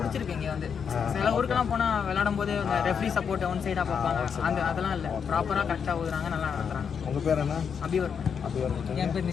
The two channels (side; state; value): right; quieter; 6.9 dB